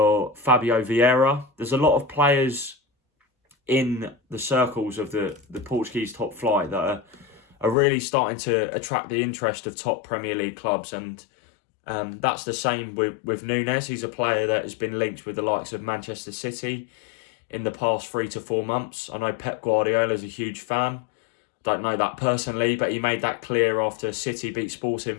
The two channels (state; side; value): drops out; right; at 7.8 s